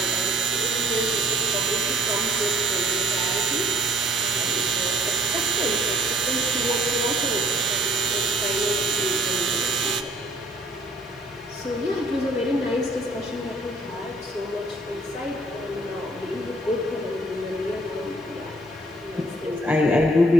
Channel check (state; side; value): normal; both; correlation 0.59